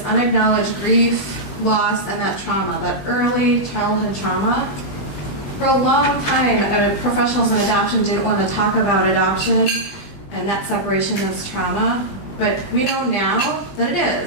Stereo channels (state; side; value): late; right; 20 ms